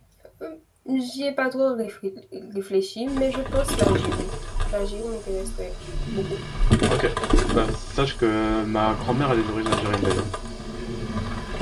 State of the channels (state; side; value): identical; both; correlation 1.00